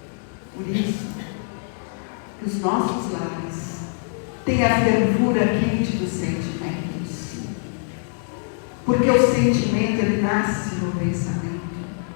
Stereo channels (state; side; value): silent; right; 63 dB below the other